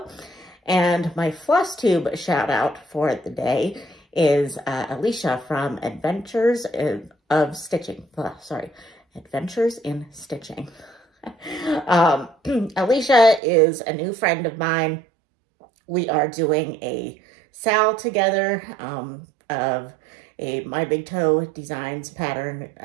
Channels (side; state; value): left; drops out; at 13.4 s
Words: And my FlossTube shout out for the day is Alicia from Adventures of Stitching. Adventures in Stitching. Alicia is a new friend of mine. We are doing a sal together of a My Big Toe Designs pattern